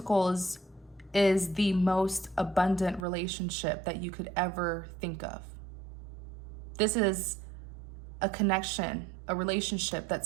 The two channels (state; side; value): drops out; left; at 3.1 s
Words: is the most abundant relationship that you could ever think of. This is a connection, a relationship